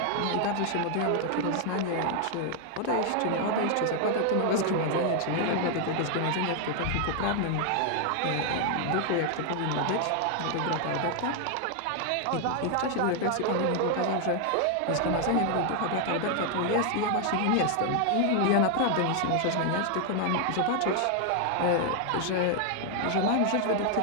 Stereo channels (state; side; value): different; both; correlation 0.00